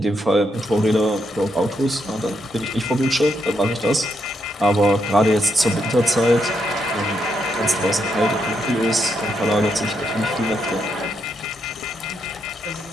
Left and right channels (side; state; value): both; normal; correlation 0.79